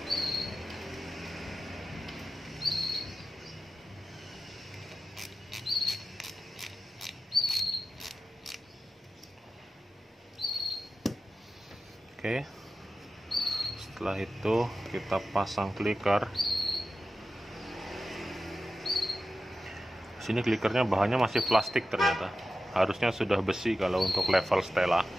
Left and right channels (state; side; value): normal; both; correlation 0.93